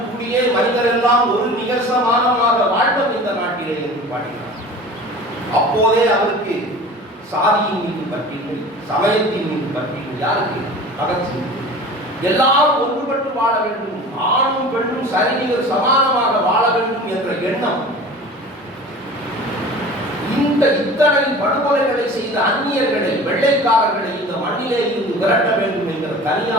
கூடியே மனிதர் எல்லாம் ஒரு நிகழ்சமானமாக வாழ்ந்தோம் இந்த நாட்டிலே என்று பாடினார். அப்போதே அவருக்கு சாதியின் மீது பற்றில்லை, சமயத்தின் மீது பற்றில்லை. யாருக்கு? பகத்சிங். எல்லாரும் ஒன்றுபட்டு வாழ வேண்டும், ஆணும் பெண்ணும் சரிநிகர் சமானமாக வாழ வேண்டும் என்ற எண்ணம். இந்த இத்தனை படுகொலைகளை செய்த அந்நியர்களை, வெள்ளைக்காரர்களை இந்த மண்ணிலே இருந்து விரட்ட வேண்டும் என்கிற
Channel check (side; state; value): both; normal; correlation 0.39